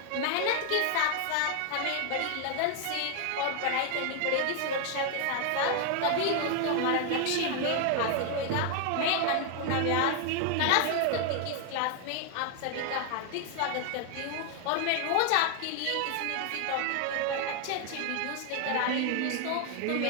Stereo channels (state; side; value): different; both; correlation 0.00